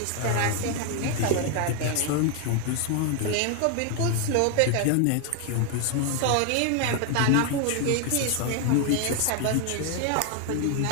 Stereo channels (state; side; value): different; both; correlation 0.01